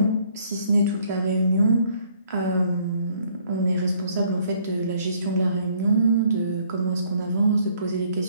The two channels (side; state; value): both; inverted; correlation -0.63